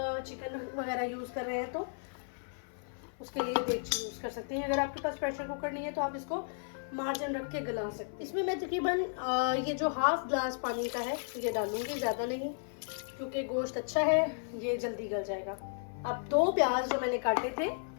चिकन वगैरह यूज़ कर रहे हैं तो उसके लिए देगची यूज़ कर सकते हैं। अगर आपके पास प्रेशर कुकर नहीं है तो आप इसको मार्जिन रख के गला सकते हैं। इसमें मैं तकरीबन ये जो हाफ ग्लास पानी का है ये डालूंगी, ज़्यादा नहीं, क्योंकि गोश्त अच्छा है, ये जल्दी गल जाएगा। अब 2 प्याज जो मैंने काटे थे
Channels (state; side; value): silent; right; 55 dB below the other